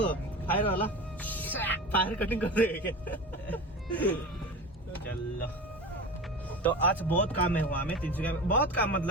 फायर वाला फायर कटिंग कर देगा क्या? चलो तो आज बहुत काम है वहाँ में तिनसुकिया में। बहुत काम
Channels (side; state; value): both; normal; correlation 0.30